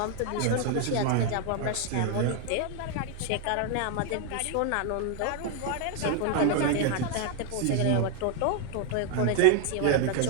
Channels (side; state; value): both; different; correlation 0.01